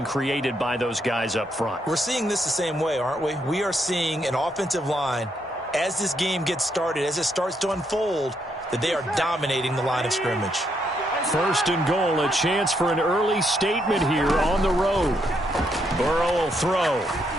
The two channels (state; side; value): normal; both; correlation 0.76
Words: created by those guys up front. We're seeing this the same way, aren't we? We are seeing an offensive line, as this game gets started, as it starts to unfold, that they are dominating the line of scrimmage. 1st and goal, a chance for an early statement here on the road. Burrow will throw.